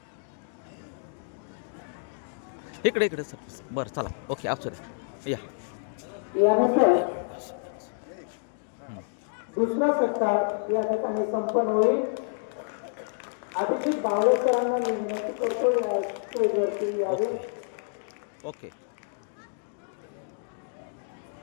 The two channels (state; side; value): silent; right; digital silence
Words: इकडे इकडे सर बरं चला ओके आप या यानंतर दुसरा सत्कार या ठिकाणी संपन्न होईल. अभिजित बावळे सरांना मी विनंती करतो या स्टेजवरती यावे. ओके